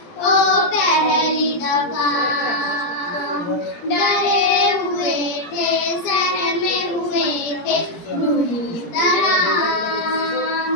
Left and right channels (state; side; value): late; right; 17 ms